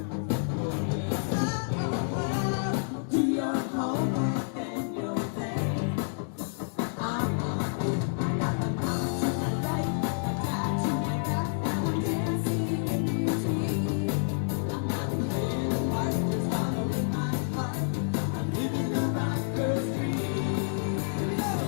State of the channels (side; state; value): right; silent; digital silence